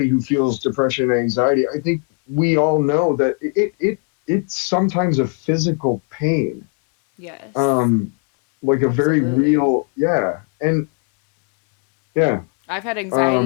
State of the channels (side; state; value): right; quieter; 39.7 dB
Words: who feels depression and anxiety, I think we all know that it's sometimes a physical pain, Yes, um, like a very absolutely. real, yeah, and yeah, I've had